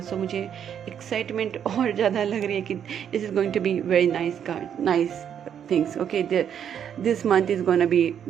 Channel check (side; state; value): left; quieter; 8.8 dB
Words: सो मुझे एक्साइटमेंट और ज़्यादा लग रही है कि this is going to be very nice card, nice things. Okay, this month is gonna be